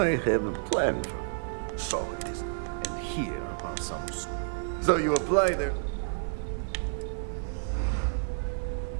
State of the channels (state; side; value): silent; left; digital silence